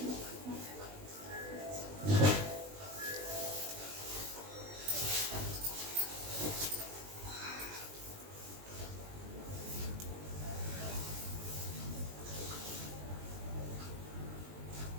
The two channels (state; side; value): late; left; 20 ms